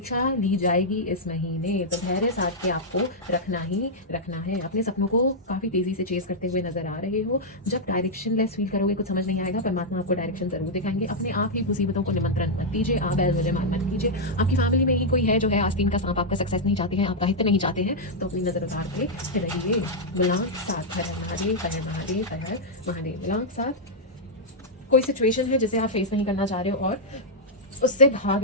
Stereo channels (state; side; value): normal; both; correlation -0.05